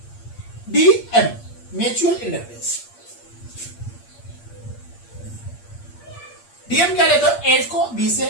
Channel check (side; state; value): right; late; 8.6 ms